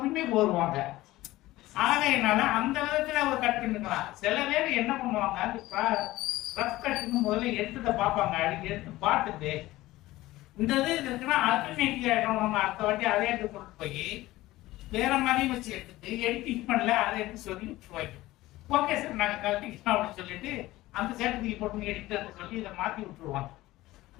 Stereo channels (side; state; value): right; quieter; 17.5 dB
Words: கோருவாங்க. ஆகையினால அந்த விதத்துல அவர் கட் பண்ணிக்கலாம். சில பேர் என்ன பண்ணுவாங்க, அந்த ரஃப் கட்டுன்னு முதல்ல எடுத்துட்ட பார்ப்பாங்க. அடிக்க எடுத்து பார்த்துட்டு இந்த இது இருக்குன்னா அல்டர்னேட்டிவ் ஆயிடும், நம்ம அடுத்த வாட்டி அதே எடுத்து கொண்டு போய் வேற மாதிரியும் வச்சு எடுத்துட்டு எடிட்டிங் பண்ணல அதை எடுத்து சொல்லி விட்டுருவாங்க. ஓகே சார் நாங்க கழட்டிக்கலாம் அப்படின்னு சொல்லிட்டு அந்த சேர்த்துக்கு போட்டு எடிட்டர் சொல்லி இதை மாத்தி விட்டுருவாங்க.